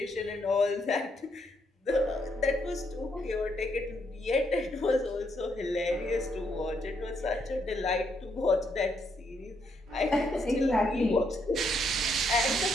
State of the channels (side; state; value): both; normal; correlation 0.75